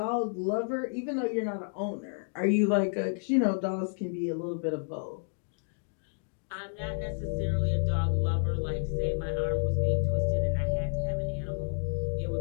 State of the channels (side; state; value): right; silent; digital silence